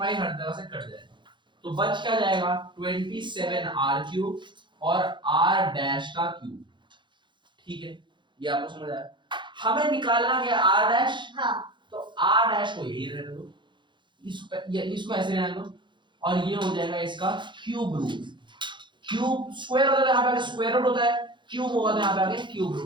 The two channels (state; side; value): late; left; 0.23 ms